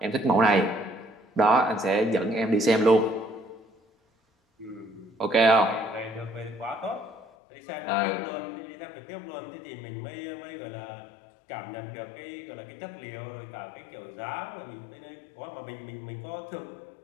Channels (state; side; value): drops out; right; at 7.2 s